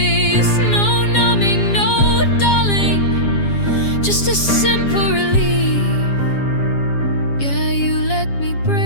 No numbing, no dulling, just a simple relief. Yeah, you let me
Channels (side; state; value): right; late; 7.4 ms